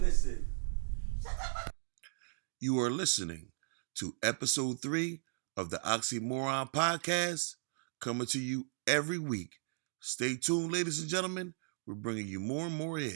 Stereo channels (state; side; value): silent; left; digital silence